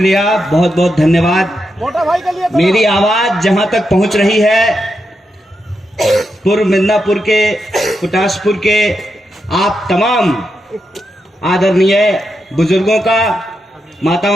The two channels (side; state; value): both; normal; correlation 0.85